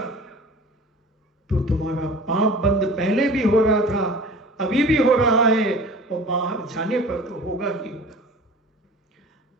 तो तुम्हारा पाप बंद पहले भी हो रहा था, अभी भी हो रहा है, और बाहर जाने पर तो होगा ही होगा।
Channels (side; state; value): both; normal; correlation 0.42